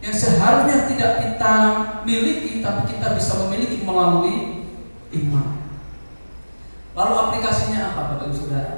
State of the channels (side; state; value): both; inverted; correlation -1.00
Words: yang seharusnya tidak kita miliki, tapi kita bisa memiliki melalui iman. Lalu aplikasinya apa Bapak Ibu Saudara?